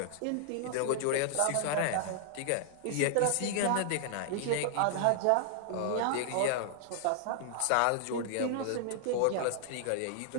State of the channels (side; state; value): both; different; correlation 0.00